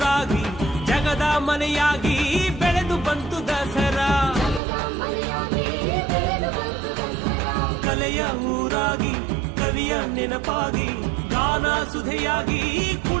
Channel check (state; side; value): drops out; left; at 4.6 s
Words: ಜಗದ ಮನೆಯಾಗಿ ಬೆಳೆದು ಬಂತು ದಸರಾ ಕಲೆಯ ಊರಾಗಿ ಕವಿಯ ನೆನಪಾಗಿ ಗಾನ ಸುಧೆಯಾಗಿ